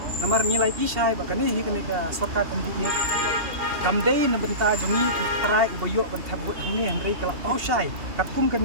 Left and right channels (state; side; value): late; left; 2.7 ms